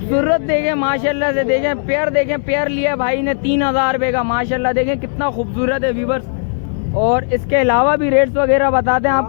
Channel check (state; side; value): silent; right; 69 dB below the other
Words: देखें माशाल्लाह से, देखें पेयर, देखें पेयर लिया भाई ने 3000 रुपये का। माशाल्लाह देखें कितना खूबसूरत है व्यूअर्स। और इसके अलावा भी रेट्स वगैरह बताते हैं